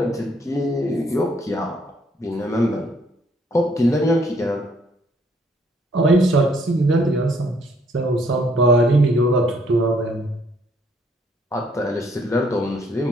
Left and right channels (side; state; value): both; normal; correlation 0.66